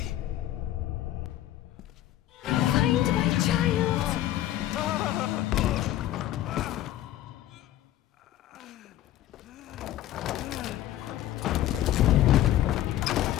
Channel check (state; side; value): quieter; right; 13.3 dB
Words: Find my child!